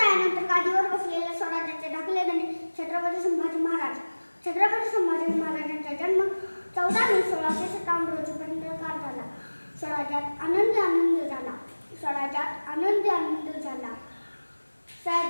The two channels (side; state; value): both; inverted; correlation -1.00